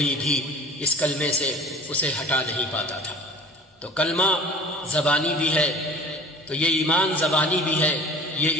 بھی اس کلمے سے اسے ہٹا نہیں پاتا تھا۔ تو کلمہ زبانی بھی ہے، تو یہ ایمان زبانی بھی ہے، یہ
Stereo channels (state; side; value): normal; both; correlation 0.44